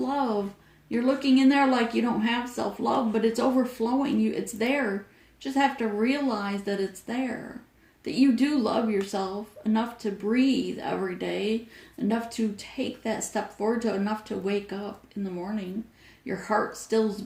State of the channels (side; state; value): both; identical; correlation 1.00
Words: You're looking in there like you don't have self-love, but it's overflowing. It's there. Just have to realize that it's there. That you do love yourself enough to breathe every day, enough to take that step forward, enough to wake up in the morning. Your heart still's